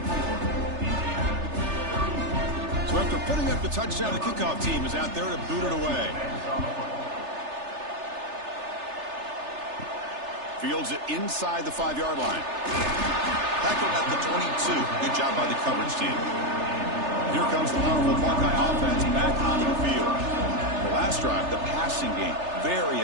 So after putting up the touchdown, the kickoff team is out there to boot it away. Fields it inside the 5-yard line. Tackled at the 22. Good job by the coverage team. Here comes the powerful Buckeye offense back onto the field. The last drive, the passing game,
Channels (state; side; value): late; left; 3.3 ms